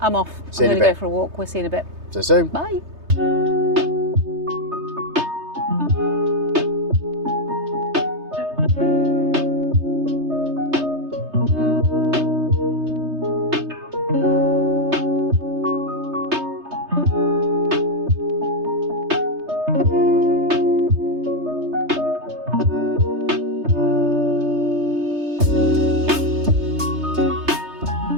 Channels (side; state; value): left; late; 3.3 ms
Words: I'm off. See you I'm in going a to go bit. for a walk. We'll see you in a bit. See you soon. Bye.